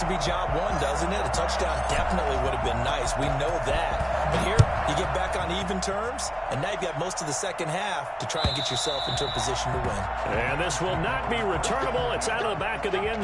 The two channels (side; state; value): both; identical; correlation 1.00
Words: to be job one, doesn't it? A touchdown definitely would have been nice. We know that. But here, you get back on even terms, and now you've got most of the second half to try and get yourself into a position to win. And this will not be returnable. It's out of the back of the end